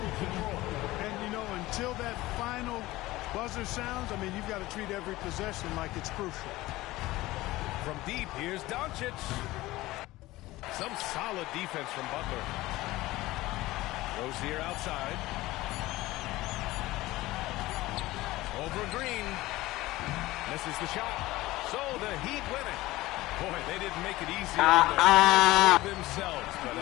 control. And, you know, until that final buzzer sounds, I mean, you've got to treat every possession like it's crucial. From deep, here's Doncic. Some solid defense from Butler. Rozier outside. Over Green. Misses the shot. So the Heat win it. Boy, they didn't make it easy on themselves, but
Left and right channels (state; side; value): quieter; right; 18.2 dB